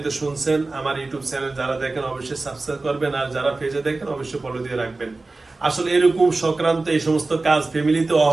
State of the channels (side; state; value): left; quieter; 3.4 dB